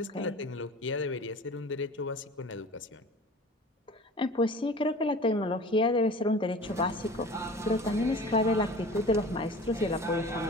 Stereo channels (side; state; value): both; normal; correlation 0.40